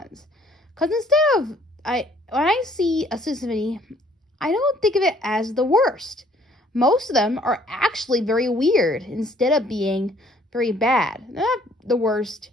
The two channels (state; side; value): normal; both; correlation 0.61